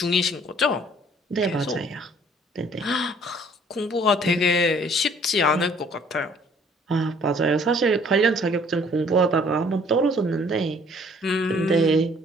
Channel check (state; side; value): normal; both; correlation 0.58